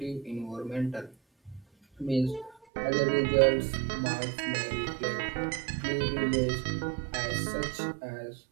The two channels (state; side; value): drops out; left; at 2.6 s